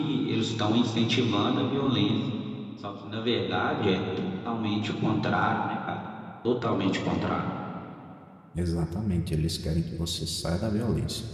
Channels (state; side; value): identical; both; correlation 1.00